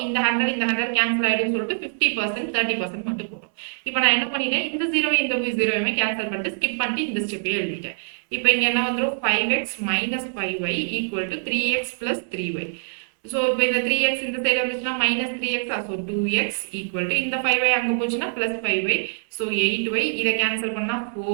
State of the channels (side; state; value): left; silent; 63 dB below the other